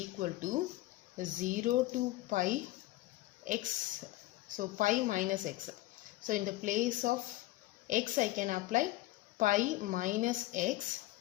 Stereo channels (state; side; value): quieter; right; 17.5 dB